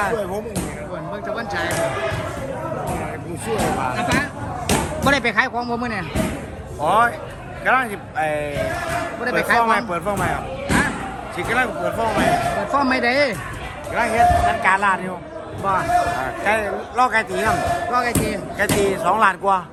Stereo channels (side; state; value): both; identical; correlation 1.00